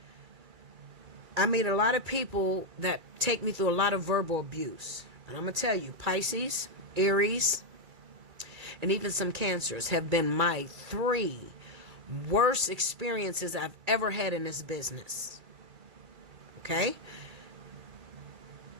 I meet a lot of people that take me through a lot of verbal abuse. And I'm going to tell you, Pisces, Aries, and even some Cancers have been my 3 worst experiences I've ever had in this business. Okay?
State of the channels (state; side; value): late; left; 2.3 ms